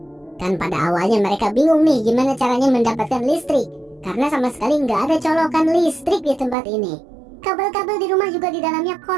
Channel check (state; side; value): drops out; left; at 6.6 s